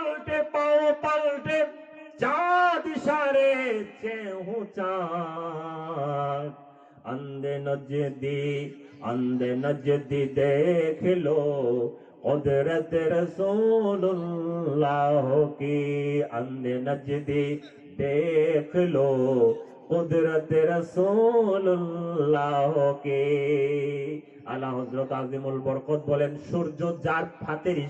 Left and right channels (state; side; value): identical; both; correlation 1.00